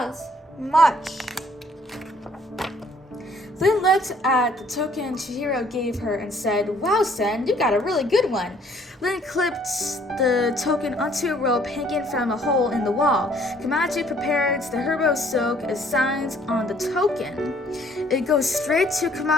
Much. Lin looked at the token Chihiro gave her and said, Wow, Sen, you got a really good one. Lin clipped the token onto a rope hanging from a hole in the wall. Kumanji prepared the herbal soak as signs on the token. It goes straight to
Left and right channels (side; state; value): both; normal; correlation 0.61